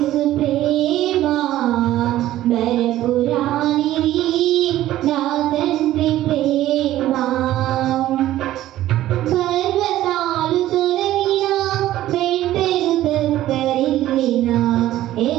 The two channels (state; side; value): quieter; left; 14.1 dB